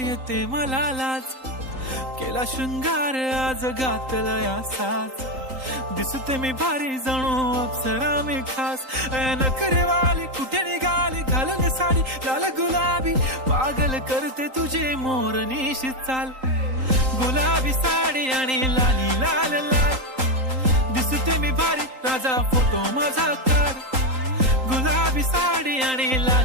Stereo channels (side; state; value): left; late; 3.8 ms